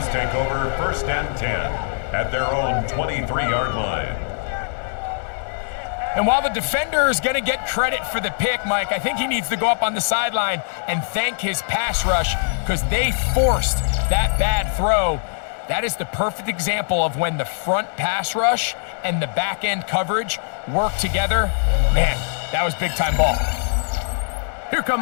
take over 1st and 10 at their own 23-yard line. And while the defender is going to get credit for the pick, Mike, I think he needs to go up on the sideline and thank his pass rush because they forced that bad throw. That is the perfect example of when the front pass rush and the back end coverage work together. Man, that was big-time ball. Here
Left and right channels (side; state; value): right; silent; digital silence